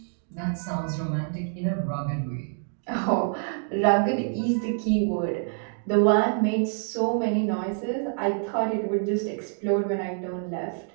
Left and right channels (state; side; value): silent; left; 60 dB below the other